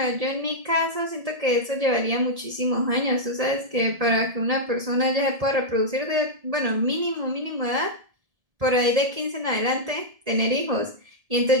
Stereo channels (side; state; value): left; late; 1.7 ms